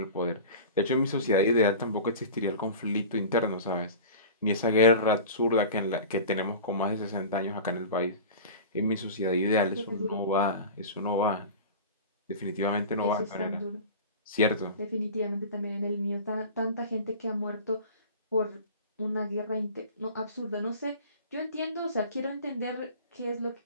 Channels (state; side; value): inverted; both; correlation -0.35